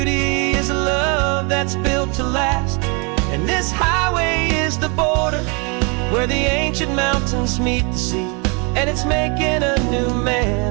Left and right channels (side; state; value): left; quieter; 32.8 dB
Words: is a love that's built to last. And this highway is the border where the ancient mountains meet the sea, and it's making a new